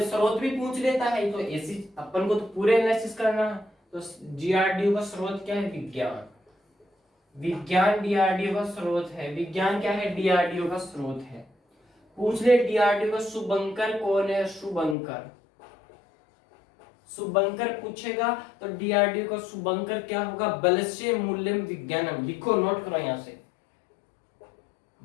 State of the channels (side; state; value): right; drops out; at 15.0 s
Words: स्रोत भी पूछ लेता है, तो ऐसी अपन को तो पूरे एनालिसिस करना है। तो डीआरडीओ का स्रोत क्या है? विज्ञान। विज्ञान डीआरडीओ का स्रोत है। विज्ञान क्या है? डीआरडीओ का स्रोत है। पूछ ले डीआरडीओ का शुभंकर कौन है? शुभंकर। शुभंकर पूछेगा तो डीआरडीओ का शुभंकर क्या होगा? बलस्य मूल्यम विज्ञानम। लिखो, नोट करो यहां से,